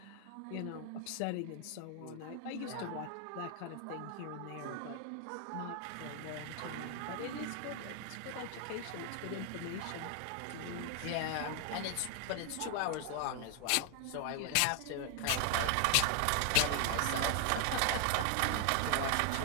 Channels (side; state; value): both; different; correlation 0.00